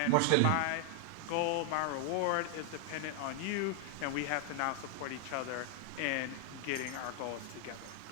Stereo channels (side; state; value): both; different; correlation 0.00